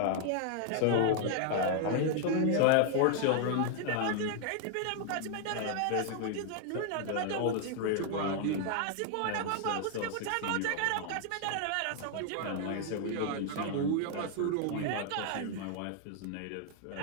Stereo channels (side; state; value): both; different; correlation 0.00